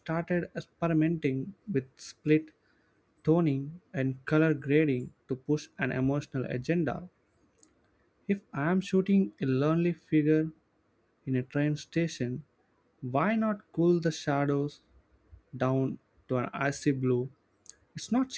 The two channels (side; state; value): both; identical; correlation 1.00